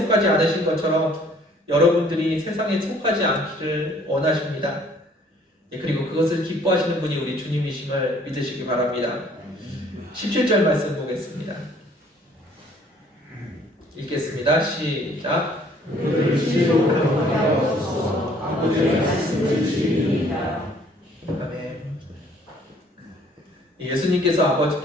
않으신 것처럼 여러분들이 세상에 속하지 않기를 원하십니다. 그리고 그것을 기뻐하시는 분이 우리 주님이심을 믿으시기 바랍니다. 17절 말씀 보겠습니다. 읽겠습니다. 시작. 아멘. 예수님께서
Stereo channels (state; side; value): normal; both; correlation 0.58